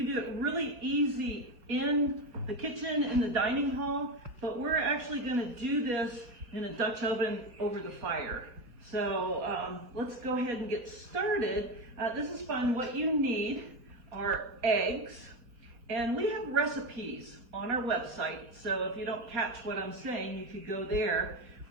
do it really easy in the kitchen, in the dining hall, but we're actually going to do this in a Dutch oven over the fire. So let's go ahead and get started. This is fun. What you need are eggs. And we have recipes on our website, so if you don't catch what I'm saying, you could go there.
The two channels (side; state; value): left; late; 4.3 ms